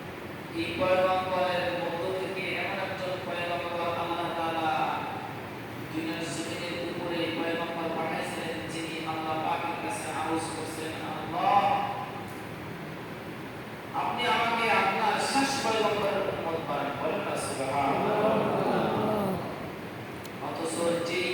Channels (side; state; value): both; identical; correlation 1.00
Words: এই পয়গম্বরের মধ্য থেকে এমন একজন পয়গম্বর আল্লাহ তাআলা দুনিয়ার জমিনের উপরে পয়গম্বর পাঠিয়েছেন যিনি আল্লাহ পাকের কাছে আরজ করেছেন আল্লাহ আপনি আমাকে আপনার শেষ পয়গম্বরের উম্মত বানান বলেন না সুবহানাল্লাহ। অথচ যে